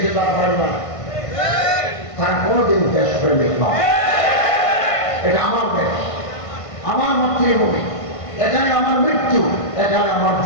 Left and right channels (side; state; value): right; late; 1.5 ms